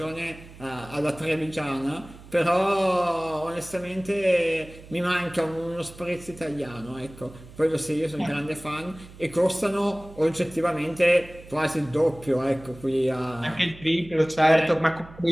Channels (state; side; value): noise; right; hum, 19 dB below the sound